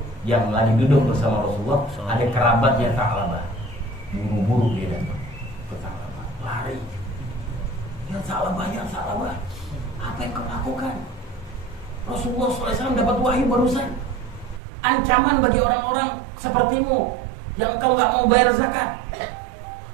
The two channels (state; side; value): drops out; left; at 14.6 s